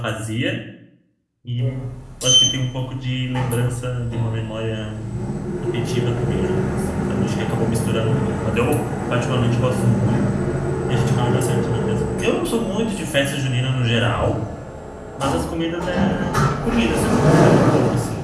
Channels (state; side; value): identical; both; correlation 1.00